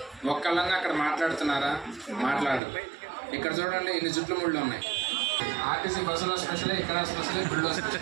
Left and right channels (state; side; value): drops out; left; at 2.6 s